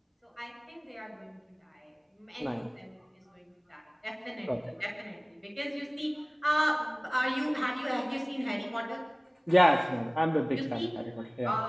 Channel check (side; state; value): both; identical; correlation 1.00